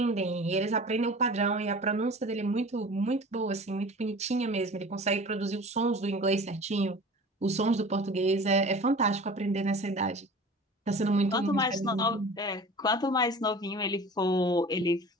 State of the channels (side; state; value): both; normal; correlation 0.40